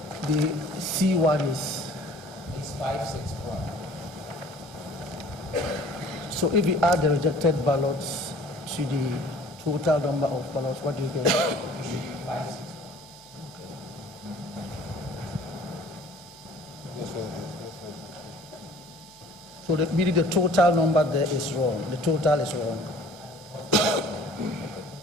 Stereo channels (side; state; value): both; normal; correlation 0.51